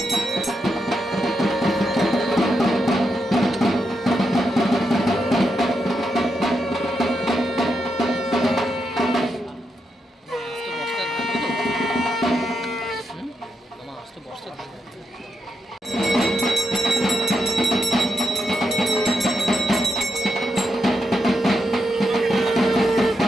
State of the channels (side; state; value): both; normal; correlation 0.84